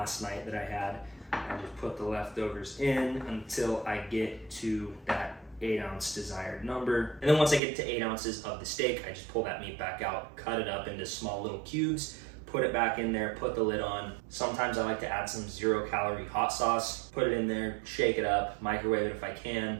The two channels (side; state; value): left; drops out; at 7.6 s